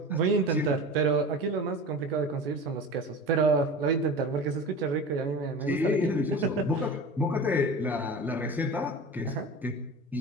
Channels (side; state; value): both; normal; correlation 0.33